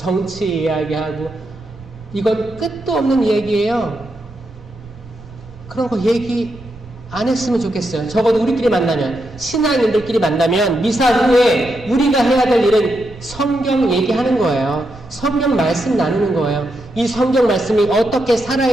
이야기하고 이건 끝도 없는 얘기예요. 그런 거 얘기 안 했으면 좋겠어요. 적어도 우리끼리 만나면 신앙인들끼리 만나면 미사 후에 우리가 해야 될 일은 성경 얘기하는 거예요. 성경 말씀 나누는 거예요. 이 성경 말씀이 어떻게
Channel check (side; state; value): right; noise; rumble, 20 dB below the sound